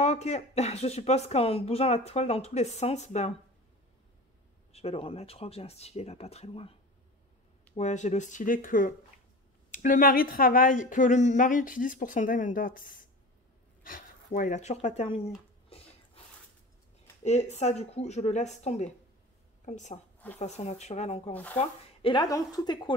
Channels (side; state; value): both; normal; correlation 0.35